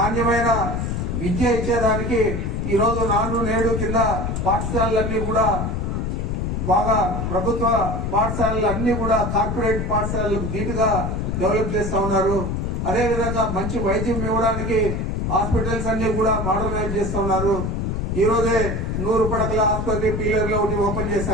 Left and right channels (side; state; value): left; noise; rumble, 1 dB below the sound